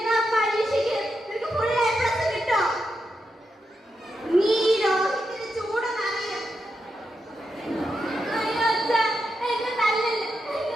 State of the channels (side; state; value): both; normal; correlation 0.85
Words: പരീക്ഷയ്ക്ക് നിനക്ക് ഫുൾ എ പ്ലസ് കിട്ടോ? നീ രോഹിത്തിന് ചൂടെന്നറിയാം. അയ്യോ അച്ഛാ, എന്നെ തല്ലല്ല,